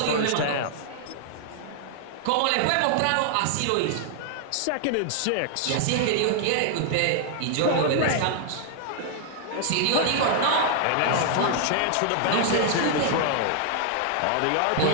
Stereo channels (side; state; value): both; different; correlation 0.00